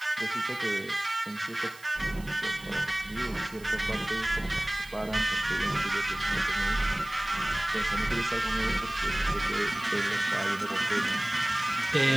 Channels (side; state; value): right; noise; hiss, 21 dB below the sound